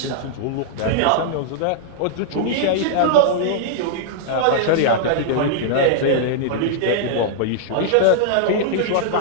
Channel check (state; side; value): different; both; correlation -0.01